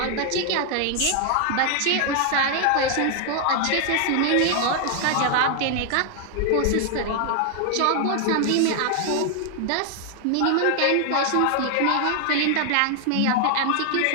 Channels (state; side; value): different; both; correlation 0.00